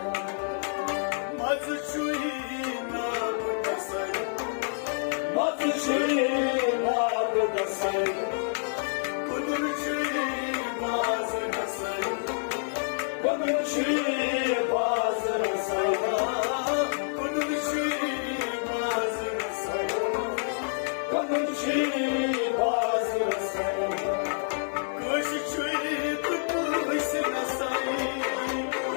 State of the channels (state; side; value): silent; right; digital silence